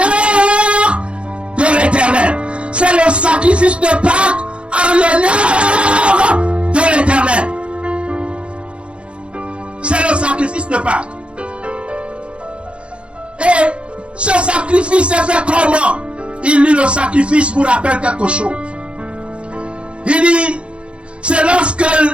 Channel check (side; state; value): left; late; 0.058 ms